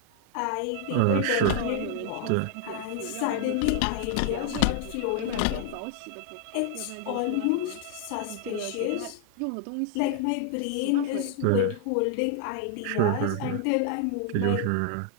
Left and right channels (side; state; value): both; different; correlation 0.00